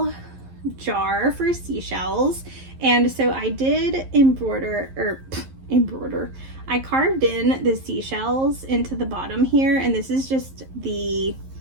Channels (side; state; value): left; late; 11 ms